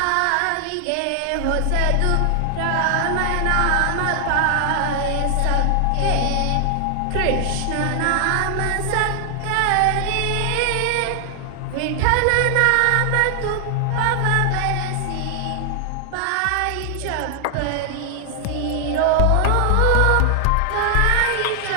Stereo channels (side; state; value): both; different; correlation 0.00